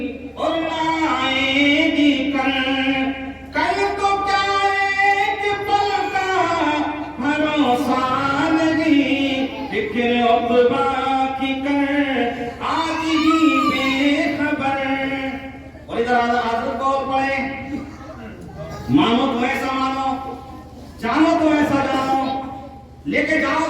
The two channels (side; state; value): both; identical; correlation 1.00